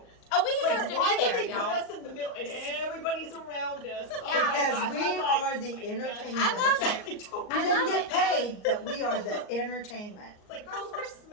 Oh, we deserve Like, why to be would there, they put y'all. us in the middle and everybody's around us? Oh my Because gosh, we I'm like, are the my gosh. entertainment. I love I don't- We I didn't love get it. paid, but we are the entertainment. It's like, girls, we're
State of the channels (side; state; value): right; late; 38 ms